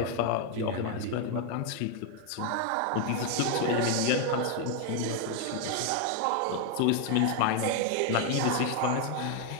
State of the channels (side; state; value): both; different; correlation 0.01